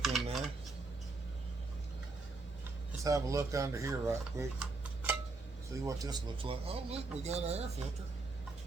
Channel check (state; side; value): quieter; left; 3.5 dB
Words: in there. Let's have a look under here right quick. See what this looks like. Oh, look, we got an air filter.